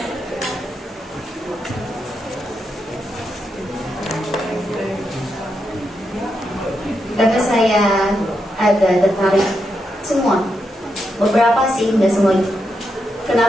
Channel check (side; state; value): both; normal; correlation 0.84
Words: Karena saya agak tertarik semua, beberapa sih, nggak semua.